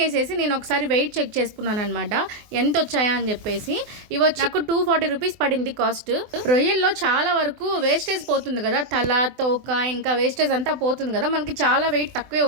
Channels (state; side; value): late; left; 24 ms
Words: చేసేసి నేను ఒకసారి వెయిట్ చెక్ చేసుకున్నాను అనమాట, ఎంత వచ్చాయా అని చెప్పేసి. ఇవి వచ్చి నాకు 240 రూపీస్ పడింది కాస్ట్. రొయ్యల్లో చాలా వరకు వేస్టేజ్ పోతుంది కదా, తల తోక ఇంకా వేస్టేజ్ అంతా పోతుంది కదా, మనకి చాలా వెయిట్ తక్కువే